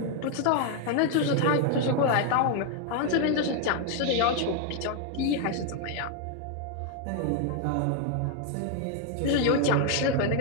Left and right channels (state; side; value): different; both; correlation 0.00